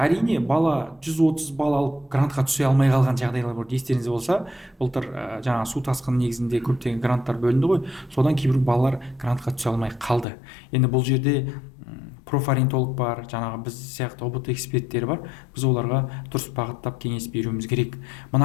бала 130 бал алып грантқа түсе алмай қалған жағдайлар бар. Естеріңізде болса, былтыр жаңа су тасқыны негізінде көптеген гранттар бөлінді ғой. Содан кейбір балалар грантқа түсе алмай қалды. Енді бұл жерде профориентолог бар, жаңағы біз сияқты ұбт эксперттері бар. Біз оларға дұрыс бағыттап кеңес беруіміз керек.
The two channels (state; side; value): drops out; right; at 10.2 s